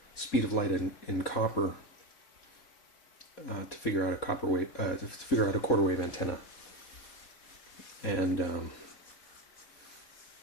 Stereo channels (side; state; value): right; late; 4.2 ms